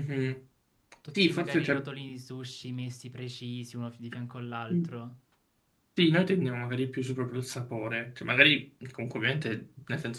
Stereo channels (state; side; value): identical; both; correlation 1.00